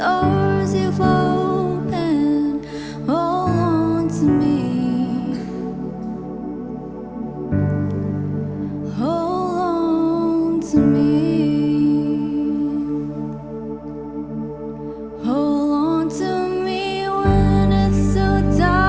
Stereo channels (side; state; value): both; identical; correlation 1.00